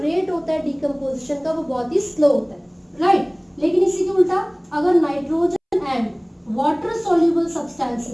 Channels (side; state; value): both; identical; correlation 1.00